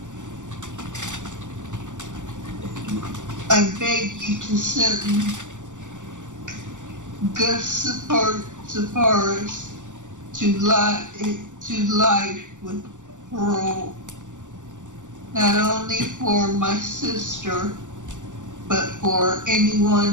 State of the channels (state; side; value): late; left; 0.86 ms